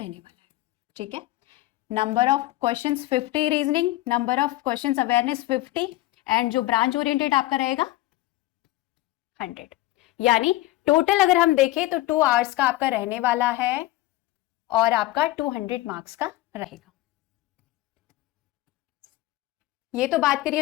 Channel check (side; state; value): right; quieter; 17.4 dB